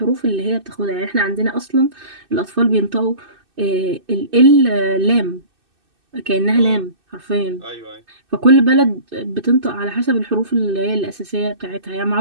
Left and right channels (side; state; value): left; late; 2.6 ms